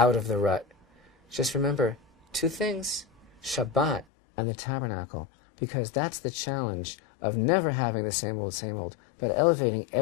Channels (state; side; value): drops out; right; at 4.0 s